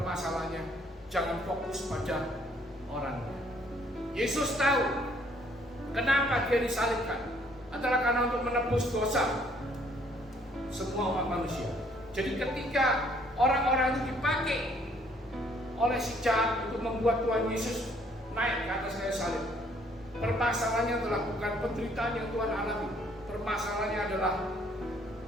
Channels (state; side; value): normal; both; correlation 0.64